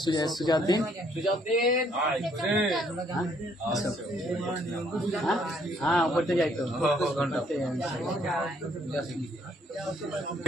সুজাউদ্দিন হ্যাঁ পড়তে যাই তো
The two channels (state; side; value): normal; both; correlation 0.66